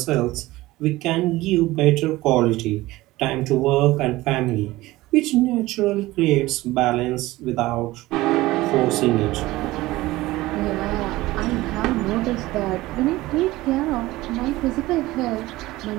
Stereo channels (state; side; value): quieter; left; 18.3 dB